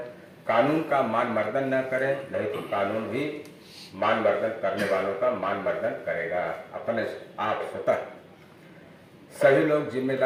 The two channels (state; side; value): identical; both; correlation 1.00